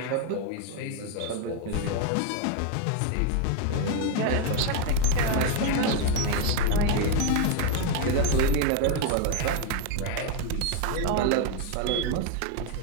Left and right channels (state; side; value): different; both; correlation 0.01